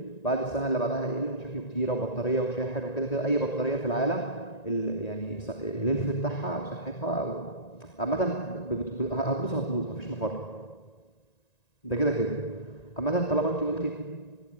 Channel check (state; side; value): late; right; 1.9 ms